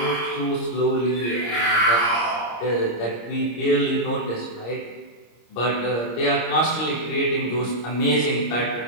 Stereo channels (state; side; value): late; right; 26 ms